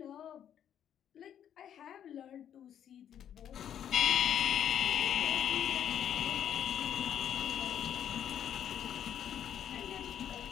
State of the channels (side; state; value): right; quieter; 9.7 dB